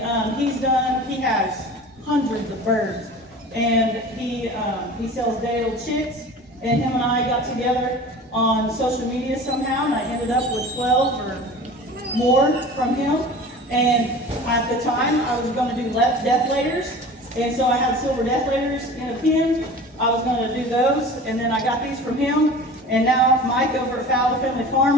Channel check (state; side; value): normal; both; correlation 0.38